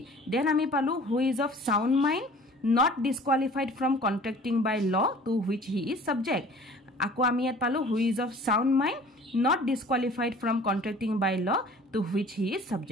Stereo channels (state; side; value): normal; both; correlation 0.48